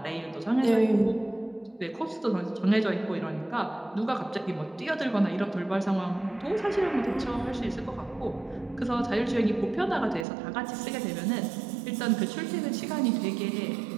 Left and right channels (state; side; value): drops out; left; at 10.2 s